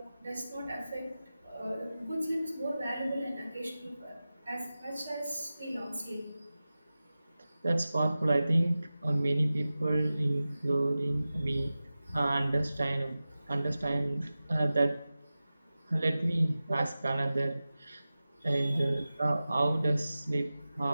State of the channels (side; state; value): both; inverted; correlation -0.95